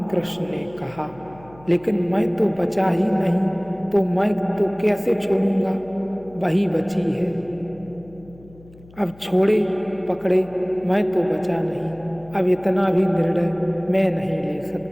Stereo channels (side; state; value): left; noise; hum, 23 dB below the sound